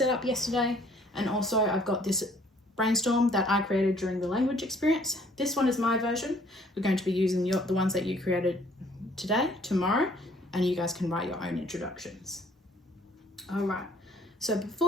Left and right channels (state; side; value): normal; both; correlation 0.60